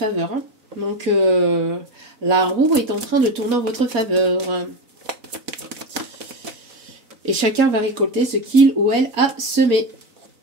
Hein. Donc, la roue est en train de tourner en votre faveur. Et chacun va récolter ce qu'il ou elle a semé.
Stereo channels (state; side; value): late; left; 3.9 ms